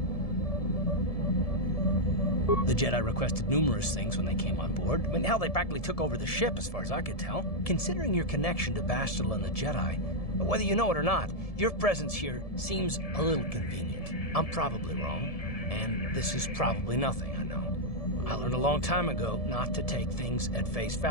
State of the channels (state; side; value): late; right; 1.7 ms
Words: The Jedi requested numerous things when they came on board. I mean, hell, they practically took over the ship as far as I could tell. Considering your connection to Bastila and the Jedi, whether you know it or not, your presence here seems a little convenient. I'm probably wrong, and this is probably nothing, I know. I learned a long time ago not to take things at face